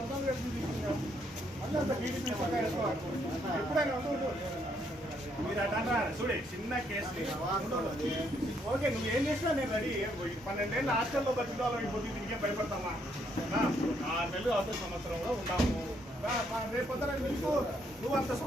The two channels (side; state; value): both; normal; correlation 0.72